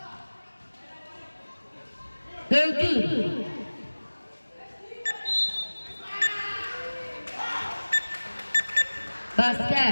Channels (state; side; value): inverted; both; correlation -1.00